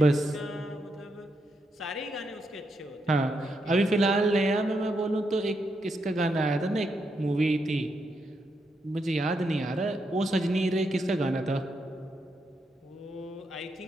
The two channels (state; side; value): normal; both; correlation 0.81